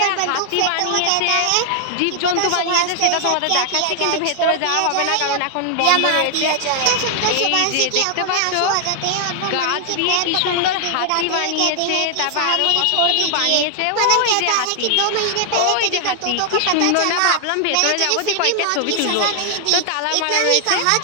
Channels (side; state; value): both; different; correlation 0.00